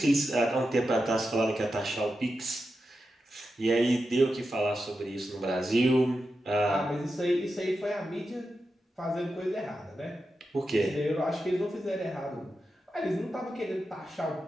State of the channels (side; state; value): both; normal; correlation 0.89